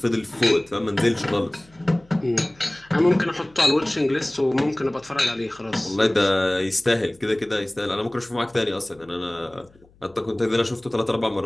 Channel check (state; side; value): noise; left; hum, 29 dB below the sound